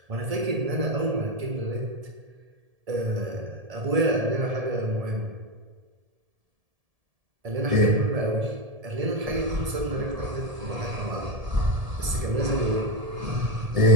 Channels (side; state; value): left; late; 1.7 ms